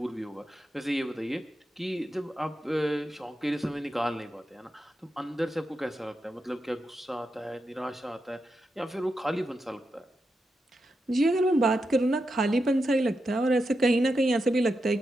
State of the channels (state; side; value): normal; both; correlation 0.87